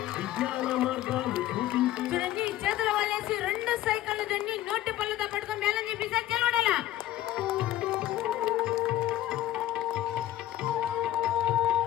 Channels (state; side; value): quieter; right; 13.8 dB